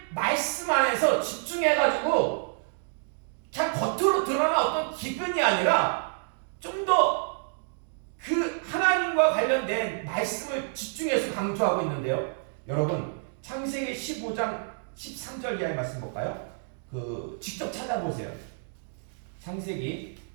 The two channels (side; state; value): left; silent; digital silence